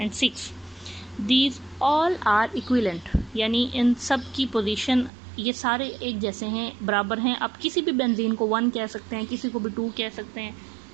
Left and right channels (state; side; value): drops out; left; at 5.1 s